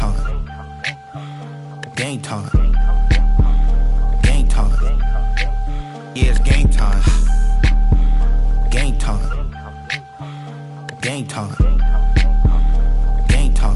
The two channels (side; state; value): both; identical; correlation 1.00